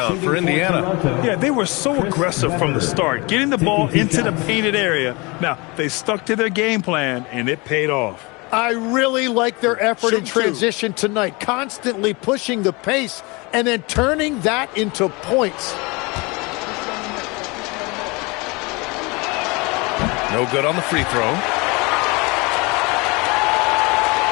for Indiana. Yeah, they were so aggressive from the start, getting the ball into the painted area. Now, they stuck to their game plan, and it paid off. I really like their effort in transition tonight, constantly pushing the pace and then turning that into points. No good on the free throw.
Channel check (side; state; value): right; quieter; 26.7 dB